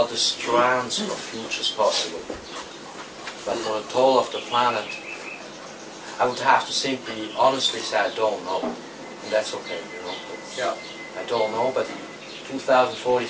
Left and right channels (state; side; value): identical; both; correlation 1.00